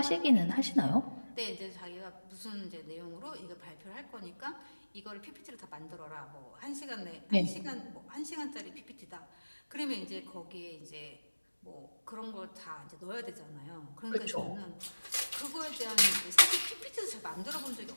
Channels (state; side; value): inverted; both; correlation -1.00